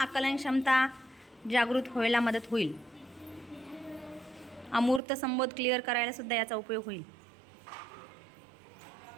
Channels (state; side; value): drops out; left; at 5.0 s